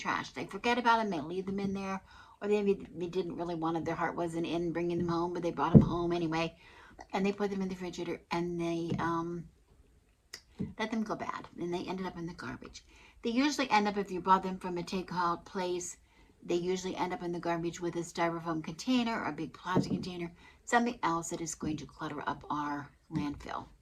They forget about them, they leave them in there, or maybe they didn't really want it, their heart wasn't in bringing them home, but they brought them home anyway, and they put them in the refrigerator and they let them go bad, and they ended up in the garbage. They usually end up, if you bought them from a takeout place, they usually end up in the garbage with a styrofoam container or a big plastic container, something else that is going to clutter up our landfill.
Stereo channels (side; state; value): both; identical; correlation 1.00